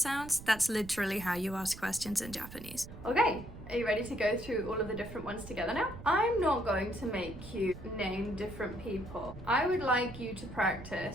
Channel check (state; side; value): noise; right; rumble, 14 dB below the sound